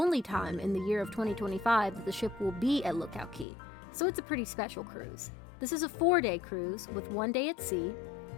time in the year of 2025 that the ship will be at Lookout Cay. So it's a pretty special cruise. This is a 4-day cruise with 1 day at sea,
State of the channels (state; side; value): drops out; right; at 3.5 s